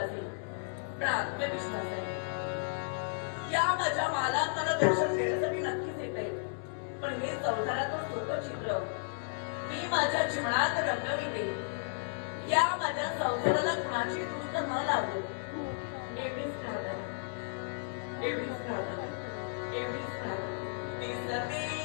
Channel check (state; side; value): silent; right; 55 dB below the other